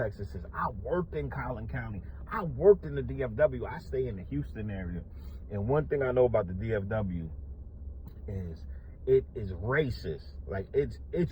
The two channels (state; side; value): identical; both; correlation 1.00